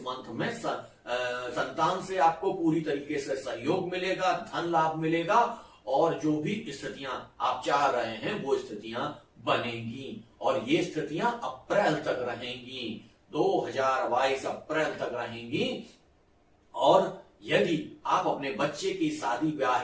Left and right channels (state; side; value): identical; both; correlation 1.00